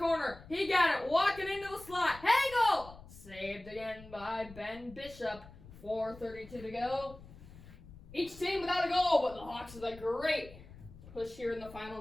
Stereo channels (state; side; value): noise; left; rumble, 18 dB below the sound